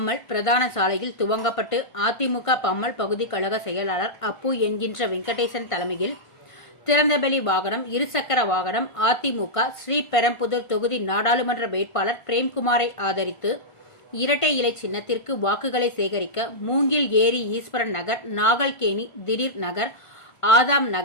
பிரதான சாலையில் துவங்கப்பட்டு அதிமுக பம்மல் பகுதி கழக செயலாளர் அப்பு என்கின்ற வெங்கடேசன் தலைமையில் திறந்தவெளி வாகனம், இருசக்கர வாகனம் அதிமுக ஸ்ரீபெரும்புதூர் தொகுதி நாடாளுமன்ற வேட்பாளர் பிரேம்குமாரை ஆதரித்து இரட்டை இலை சின்னத்திற்கு வாக்குகளை சேகரிக்க மூங்கில் ஏரி ஈஸ்வரன் நகர், நாகல்கேணி திடீர் நகர், ஆதாம்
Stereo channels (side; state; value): right; late; 1.5 ms